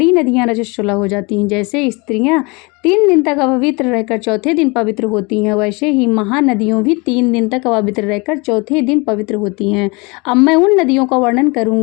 नदियां रजस्वला हो जाती हैं। जैसे स्त्रियां 3 दिन तक अपवित्र रहकर चौथे दिन पवित्र होती हैं, वैसे ही महानदियों भी 3 दिन तक अपवित्र रहकर चौथे दिन पवित्र होती हैं। अब मैं उन नदियों का वर्णन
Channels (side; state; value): right; quieter; 27.7 dB